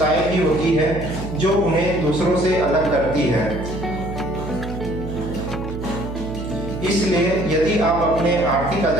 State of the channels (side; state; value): right; noise; hum, 8 dB below the sound